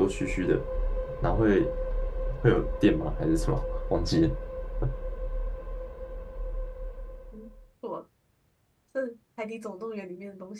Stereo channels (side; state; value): both; identical; correlation 1.00